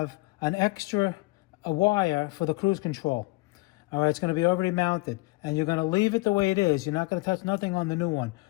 an extra wire for the cruise control. All right, it's going to be already mounted, and you're going to leave it the way it is. You're not going to touch nothing on the new one.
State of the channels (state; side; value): quieter; right; 23.5 dB